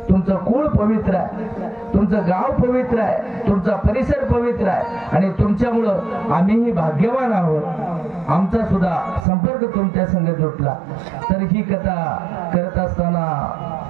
तुमचं कुळ पवित्र आहे, तुमचं गाव पवित्र आहे, तुमचा परिसर पवित्र आहे आणि तुमच्यामुळं आम्हीही भाग्यवान आहोत. आमचा सुद्धा संपर्क तुमच्या संग जोडला. तर ही कथा करत असताना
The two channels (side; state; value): left; drops out; at 9.2 s